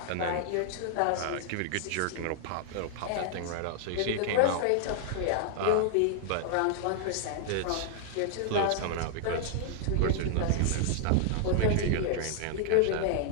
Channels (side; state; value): both; different; correlation 0.00